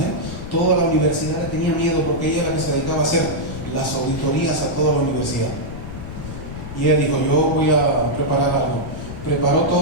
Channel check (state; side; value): noise; left; rumble, 10 dB below the sound